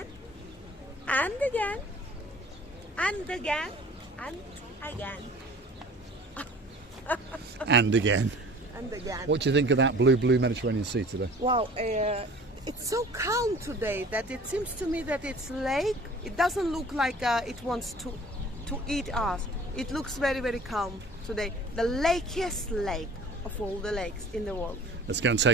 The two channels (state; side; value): normal; both; correlation 0.46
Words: And again, and again, and again. And again. And again. What do you think of that blue Mediterranean Sea today? Wow, it's so calm today that it seems to me that it's lake. It doesn't look like it wants to eat us. It looks very, very calm today. The lakiest lake of all the lakes in the world. Let's go and